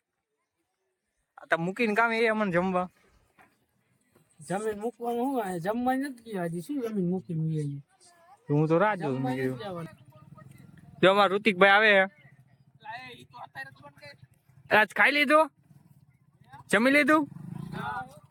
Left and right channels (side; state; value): both; identical; correlation 1.00